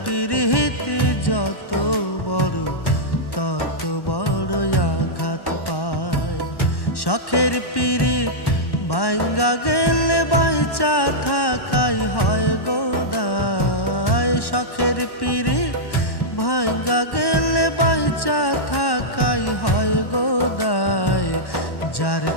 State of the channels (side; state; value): right; late; 1.1 ms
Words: পীড়িত যত বড় তত বড় আঘাত পায়। শখের পীড়িত ভাঙ্গা গেলে বাইচা থাকাই হয় গো দায়। শখের পীড়িত ভাঙ্গা গেলে বাইচা থাকাই হয় গো দায়। যার